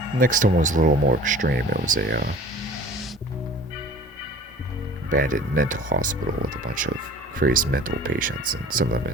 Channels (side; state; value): both; normal; correlation 0.45